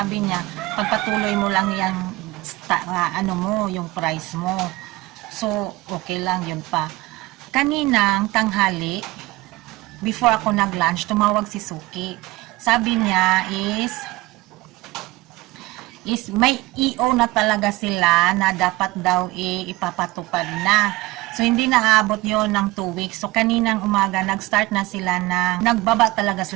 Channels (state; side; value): quieter; left; 20.4 dB